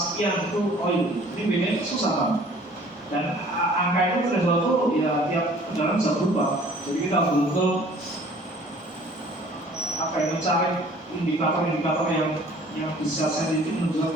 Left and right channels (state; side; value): normal; both; correlation 0.52